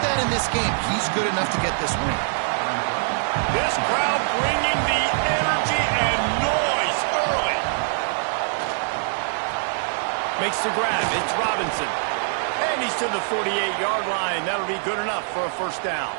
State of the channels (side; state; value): left; silent; digital silence